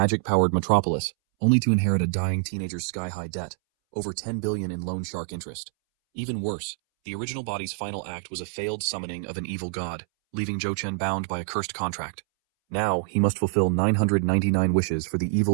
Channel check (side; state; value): left; silent; 61 dB below the other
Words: metropolis, only to inherit a dying teenager's sky-high debt, over 10 billion in loan shark interest. Even worse, the original body's final act was a failed summoning of an evil god, leaving Zhou Chen bound by a cursed contract. Now, he must fulfill 999 wishes for the